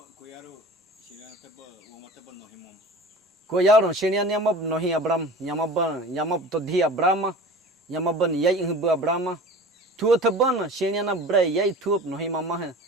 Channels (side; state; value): both; normal; correlation 0.39